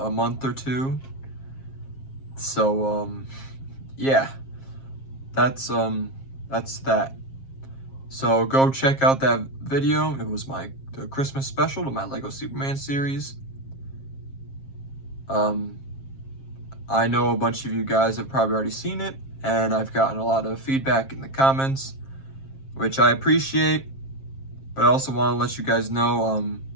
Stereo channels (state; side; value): late; right; 7.5 ms